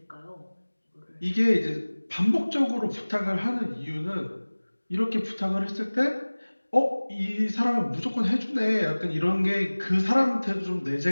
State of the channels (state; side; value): inverted; both; correlation -1.00